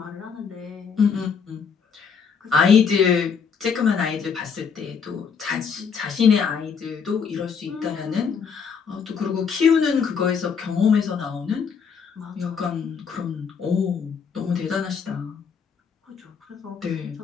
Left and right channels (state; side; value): quieter; right; 6.3 dB